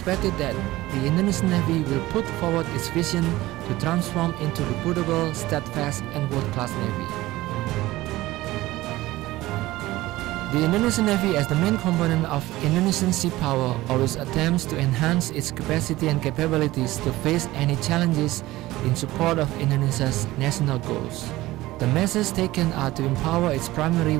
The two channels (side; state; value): left; quieter; 17.7 dB